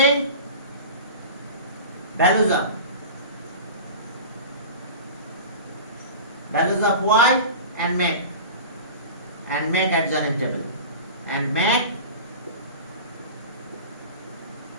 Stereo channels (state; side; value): inverted; both; correlation -0.34